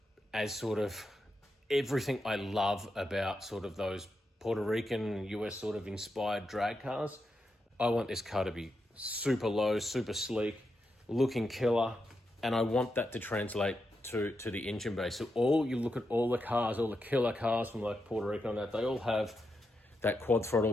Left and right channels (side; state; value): both; normal; correlation 0.85